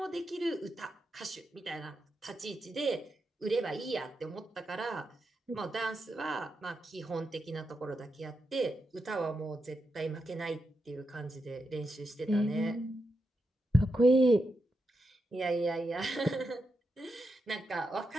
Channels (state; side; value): normal; both; correlation 0.86